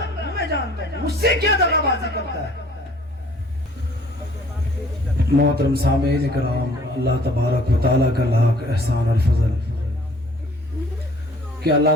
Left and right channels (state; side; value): normal; both; correlation 0.55